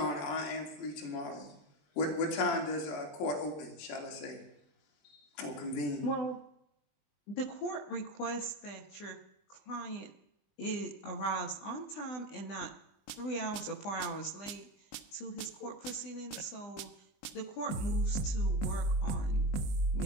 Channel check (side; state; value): right; late; 20 ms